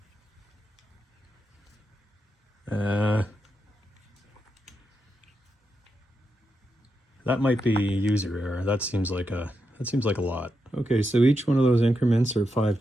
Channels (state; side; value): normal; both; correlation 0.85